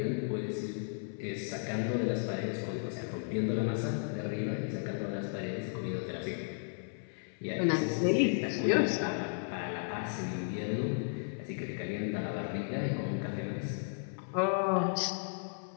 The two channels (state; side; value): silent; right; 55 dB below the other